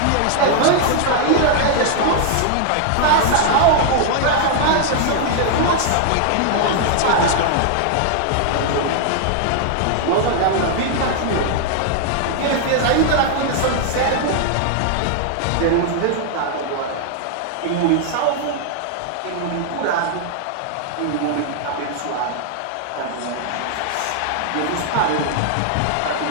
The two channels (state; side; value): different; both; correlation 0.00